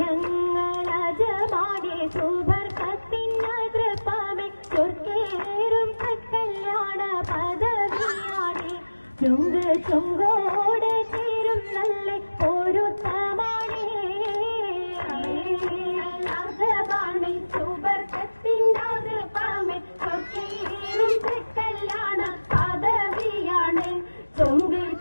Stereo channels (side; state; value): both; inverted; correlation -1.00